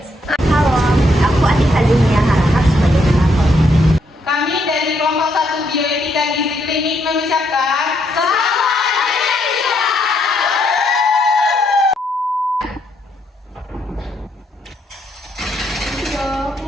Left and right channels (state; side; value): normal; both; correlation 0.75